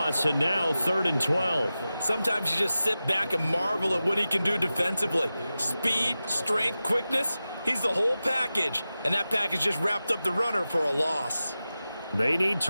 and now 3rd and 12. Sometimes you just sit back and marvel at what he can do defensively. Speed, strength, quickness, he's the whole package. And that package just wrapped up the runner for a loss. They need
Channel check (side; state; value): both; inverted; correlation -0.94